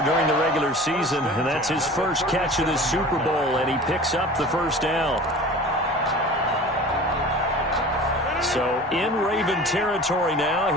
during the regular season, and that's his first catch of this Super Bowl, and he picks up the first down. So in Raven territory now,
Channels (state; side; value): normal; both; correlation 0.40